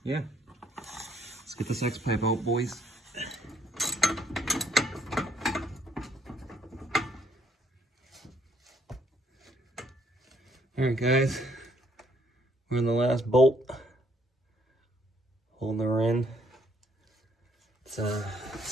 Yeah. Let's get this X-pipe out, boys. Alright guys, we're in the last bolt, holding her in. Let's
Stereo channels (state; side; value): normal; both; correlation 0.67